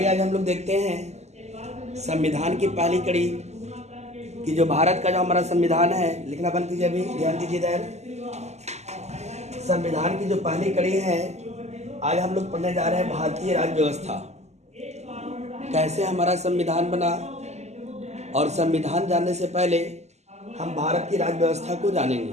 आज हम लोग देखते हैं संविधान की पहली कड़ी कि जो भारत का जो हमारा संविधान है, लिखना बंद कीजिए, अभी ध्यान दीजिए इधर। संविधान की जो पहली कड़ी है, आज हम लोग पढ़ने जा रहे हैं भारतीय राज्य व्यवस्था, कैसे हमारा संविधान बना। और संविधान जानने से पहले हम भारत की राज्य व्यवस्था को जानेंगे।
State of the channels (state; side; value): late; left; 0.33 ms